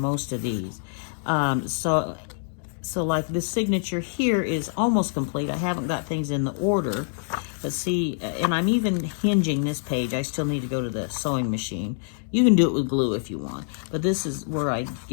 of these. So like this signature here is almost complete. I haven't got things in the order, but see, and I'm even hinging this page. I still need to go to the sewing machine. You can do it with glue if you want, but this is where I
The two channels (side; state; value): right; silent; digital silence